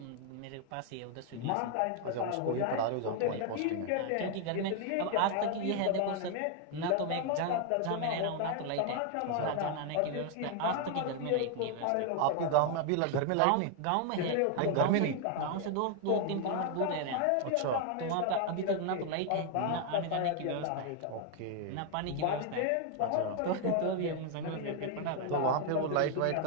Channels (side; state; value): both; different; correlation 0.00